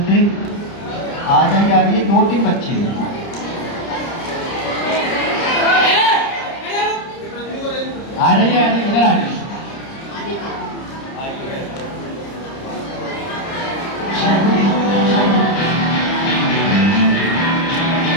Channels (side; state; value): right; late; 30 ms